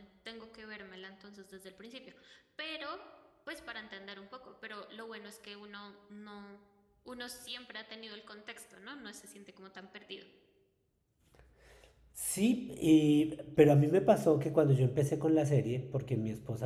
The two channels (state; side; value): identical; both; correlation 1.00